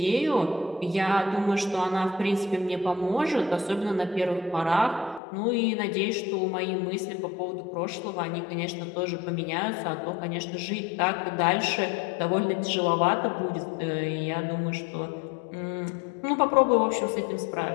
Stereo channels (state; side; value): drops out; right; at 5.2 s